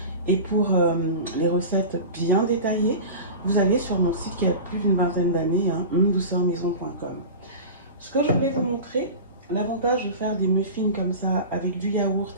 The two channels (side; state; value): both; inverted; correlation -0.31